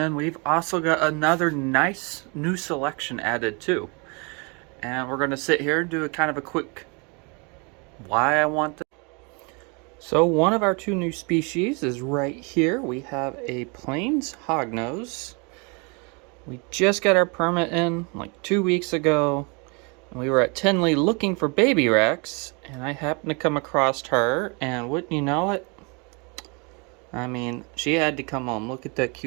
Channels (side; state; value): left; quieter; 31.9 dB